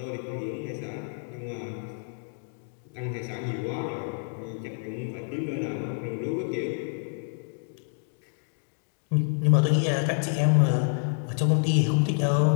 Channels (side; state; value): right; silent; 59 dB below the other